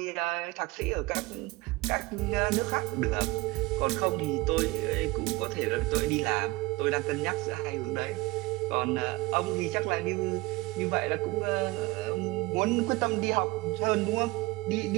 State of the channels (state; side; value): quieter; left; 22.0 dB